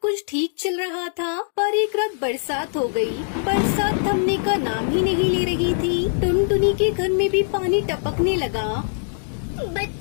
कुछ ठीक चल रहा था, पर एक रात बरसात हो गई। बरसात थमने का नाम ही नहीं ले रही थी। टुनटुनी के घर में भी पानी टपकने लगा।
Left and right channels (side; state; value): right; silent; digital silence